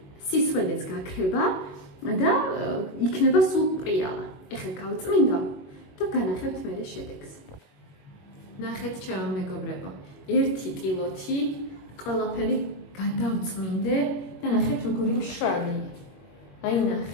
სისველეც გაქრება და იქნება სულ პრიალა. ეხლა გავწმინდა და განახევთ მერე შედეგს. ნახეთ ჩემო მეგობრებო, ერთი ტილოთი ყველაფერი გადავწმინდე და ნახეთ როგორი მშრალი. აი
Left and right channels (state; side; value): late; right; 22 ms